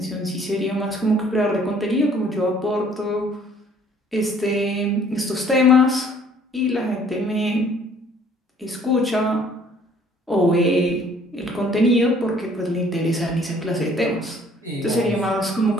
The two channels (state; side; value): normal; both; correlation 0.58